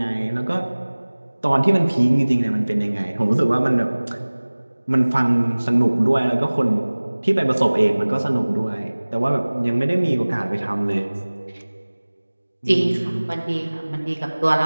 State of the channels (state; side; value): inverted; both; correlation -1.00